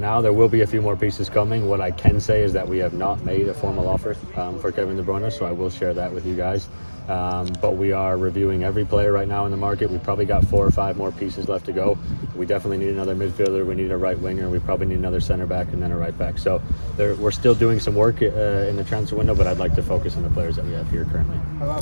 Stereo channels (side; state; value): both; inverted; correlation -1.00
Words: There will be a few more pieces coming. What I can say is that we have not made a formal offer for Kevin de Bruyne, so I will share that with you guys. But we are reviewing every player right now in the market. We've probably got 4 or 5 more pieces left to go. We definitely need another midfielder. We need a right winger. We probably need another center back and then a right back. So we're still doing some work in the transfer window, but I'd like to focus on the players that we have here currently. How about